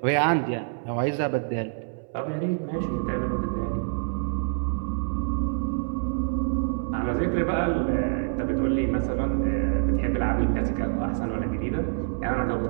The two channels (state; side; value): silent; left; 61 dB below the other